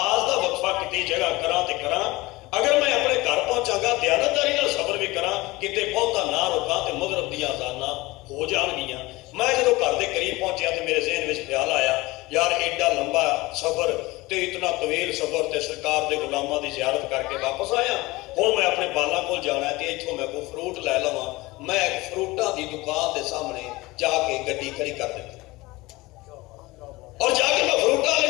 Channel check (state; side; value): quieter; right; 21.1 dB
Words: का वक्फा किसी जगह करा तो करा, अगर मैं अपने घर पहुंचागा दयानतदारी नाल सफर भी करा, किते बहुता ना रुका तो मगरब दी अजाना हो जाणगियां। मैं जो घर के करीब पहुंचा तो मेरे ज़हन में ख्याल आया यार एडा लंबा सफर तो इतना तवील सफर तो सरकार के गुलामां की जियारत करके वापस आया। हुण मैं अपने बालां कोल जाना है तो इत्थों मैं कोई फ्रूट लै लवां। मैं एक फ्रूटां की दुकान के सामने जाके गड्डी खड़ी कर दी और जाके मैं फ्रूटां वाले